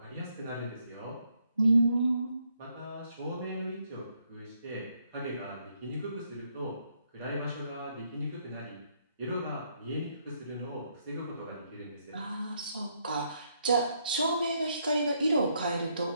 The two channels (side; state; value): both; inverted; correlation -0.74